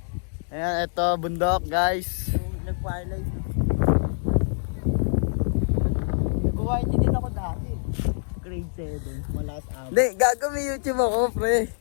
Ayan, ito bundok guys. Nag-firelight. Nag-white din ako dati. Grade 7, malakas ako. Hindi, gago may YouTube ako, pre.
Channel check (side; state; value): right; silent; digital silence